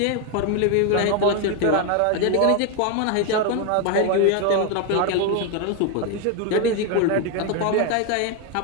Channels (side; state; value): both; different; correlation 0.02